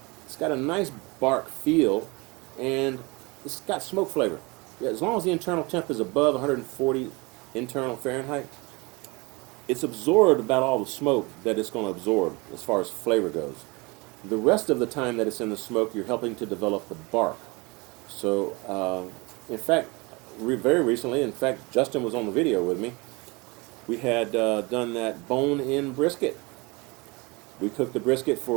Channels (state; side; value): quieter; left; 26.4 dB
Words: it's got a nice bark feel, and it's got smoke flavor. Yeah, as long as the internal temp is above 140 internal Fahrenheit, it's absorbed about all the smoke that it's going to absorb as far as flavor goes. The rest of the time that it's in the smoke, you're helping to develop the bark. So, in fact, very recently, in fact, Justin was on the video with me. We had done that bone-in brisket. We cooked the brisket